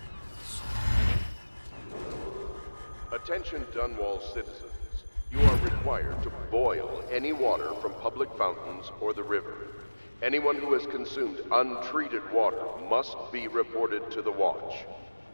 Attention Dunwall citizens. You are required to boil any water from public fountains or the river. Anyone who has consumed untreated water must be reported to the Watch.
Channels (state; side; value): inverted; both; correlation -1.00